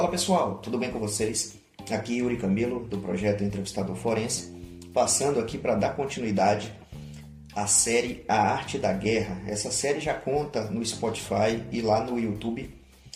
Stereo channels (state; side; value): identical; both; correlation 1.00